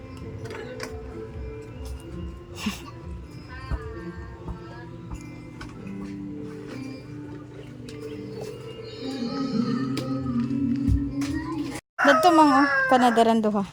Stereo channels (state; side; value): identical; both; correlation 1.00